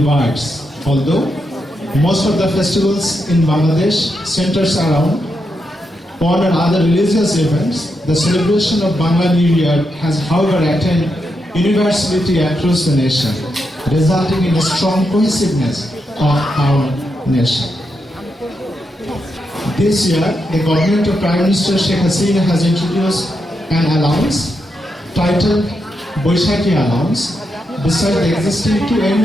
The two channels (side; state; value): both; normal; correlation 0.84